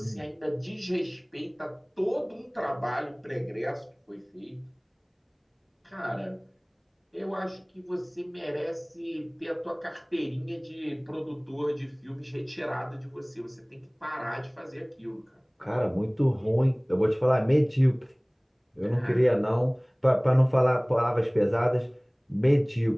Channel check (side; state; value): both; identical; correlation 1.00